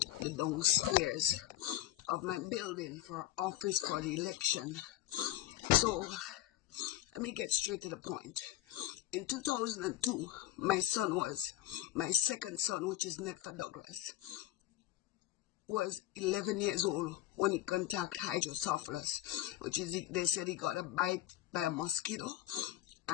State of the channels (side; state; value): right; quieter; 14.6 dB